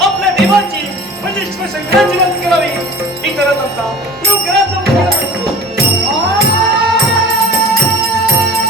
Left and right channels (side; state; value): both; normal; correlation 0.42